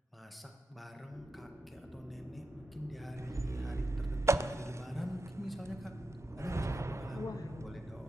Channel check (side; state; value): both; normal; correlation 0.88